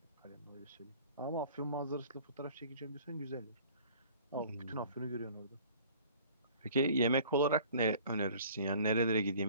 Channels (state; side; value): inverted; both; correlation -0.50